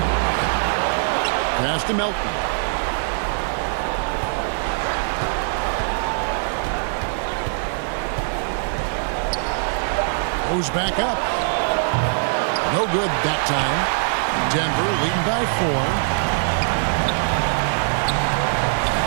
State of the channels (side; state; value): left; silent; digital silence